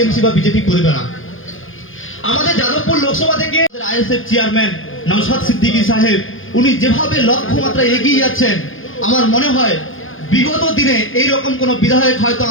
বা বিজেপি করবে না। আমাদের যাদবপুর লোকসভা থেকে আইএসএফ চেয়ারম্যান নওশাদ সিদ্দিকী সাহেব উনি যেভাবে লক্ষ্যমাত্রা এগিয়ে যাচ্ছেন, আমার মনে হয় বিগত দিনে এইরকম কোন বিধায়ক হয়তো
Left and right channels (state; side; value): late; right; 0.58 ms